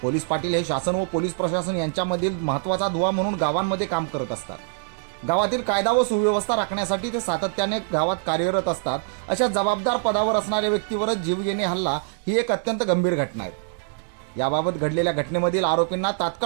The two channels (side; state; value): left; silent; 62 dB below the other